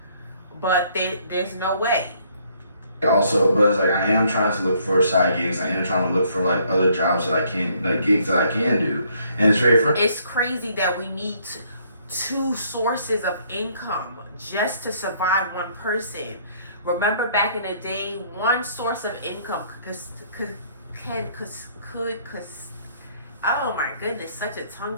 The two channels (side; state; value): both; inverted; correlation -0.65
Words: but there's no way. Also, but it's like, I am trying to look for side gigs. I am trying to look for like other jobs that I can, like gigs that I can do, and it's very frustrating. It's crazy that we need two sources of income just to survive one person. Remember back in the day, one source of income could oh my goodness, such a tongue